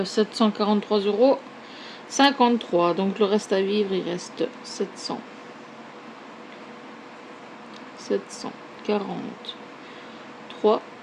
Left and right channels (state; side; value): identical; both; correlation 1.00